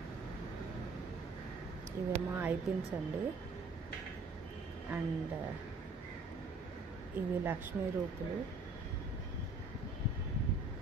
ఇవేమో ఐ పిన్స్ అండి. అండ్ ఇవి లక్ష్మీ రూపులు.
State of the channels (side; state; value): left; quieter; 3.5 dB